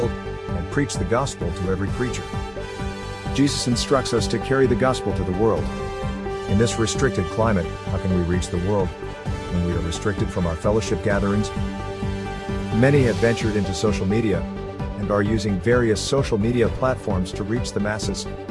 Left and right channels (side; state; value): both; identical; correlation 1.00